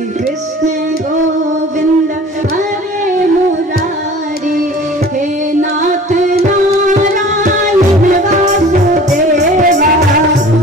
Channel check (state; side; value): normal; both; correlation 0.44